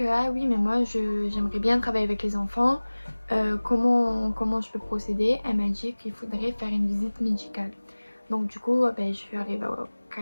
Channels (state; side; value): inverted; both; correlation -1.00